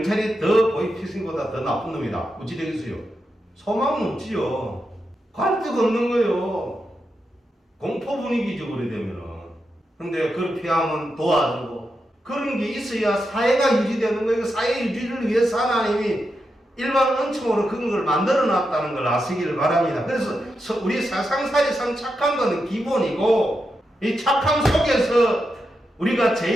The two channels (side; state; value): both; normal; correlation 0.87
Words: 더 보이스피싱보다 더 나쁜 놈이다. 어찌 되겠어요? 소망은 없지요. 갈 데가 없는 거예요. 공포 분위기죠, 그래 되면은. 근데 그걸 피하면 도와주고 그런 게 있어야 사회가 유지되는 거예요. 사회 유지를 위해서 하나님이 일반 은총으로 그런 걸 만들어 놨다는 걸 아시기를 바랍니다. 그래서 우리 세상살이상 착한 것은 기본이고, 이 착함 속에서 우리가